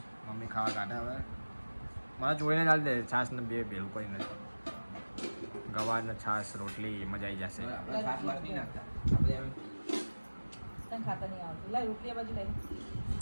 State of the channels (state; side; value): inverted; both; correlation -1.00